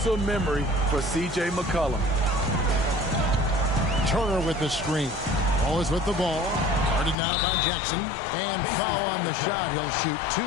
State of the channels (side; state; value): right; drops out; at 7.2 s